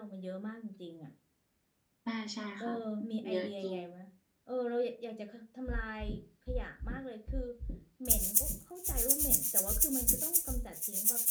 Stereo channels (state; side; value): identical; both; correlation 1.00